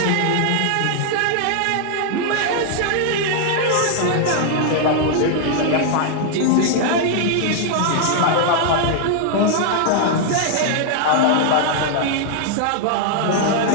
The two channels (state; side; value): different; both; correlation 0.00